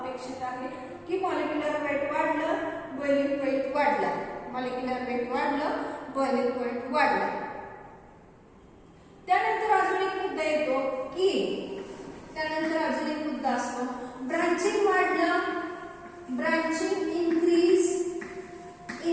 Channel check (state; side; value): identical; both; correlation 1.00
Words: आहे, की मॉलिक्युलर वेट वाढलं, बॉइलिंग पॉइंट वाढला, मॉलिक्युलर वेट वाढलं, बॉइलिंग पॉइंट वाढला. त्यानंतर अजून एक मुद्दा येतो की असतो ब्रांचिंग वाढलं, branching increase,